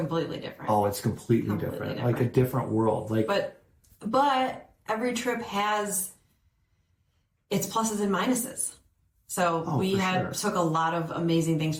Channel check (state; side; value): identical; both; correlation 1.00